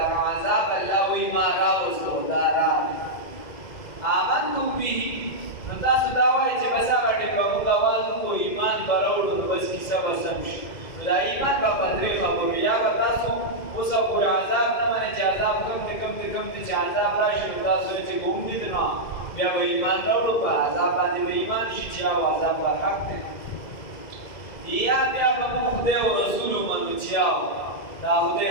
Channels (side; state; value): right; late; 2.0 ms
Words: عذاب الله وایي ما راوستو دا راغی آمنتم به نو تاسو دا وایئ چې بس هغه ټکه موږ اول کو ایمان به راوړو نو بس کیسه به سم شي. نو دا ایمان به په درې خبرو یا به تاسو اوسه پورې عذاب نه منئ چې عذاب کم دی چې عذاب راشي نو تاسو وایئ چې ګوم دي نو بیا به ایمان راوړو په عذاب باندې به ایمان شي چې هغه عذاب به حق دی یا بیا به موږ خدای او رسول ومنو چې دا خدای